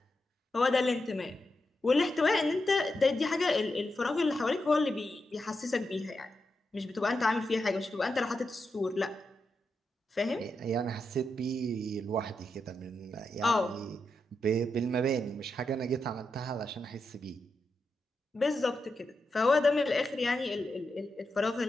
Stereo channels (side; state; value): both; normal; correlation 0.86